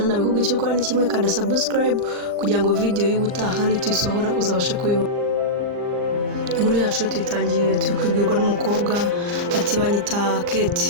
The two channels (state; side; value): late; left; 39 ms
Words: nabikubwiye cyo ukora ni kimwe kanda subscribe kugira ngo video y'ubutaha ni tuyisohora uzabashe kubibona. Inkuru yacu tuyitangiye tukwibwirwa n'umukobwa ati banyita